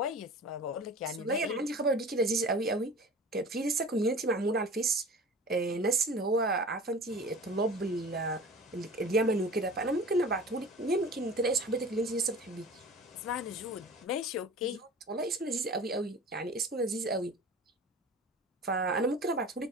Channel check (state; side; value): normal; both; correlation 0.39